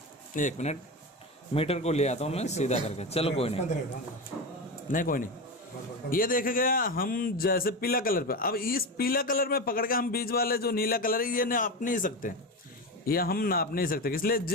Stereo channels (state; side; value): normal; both; correlation 0.20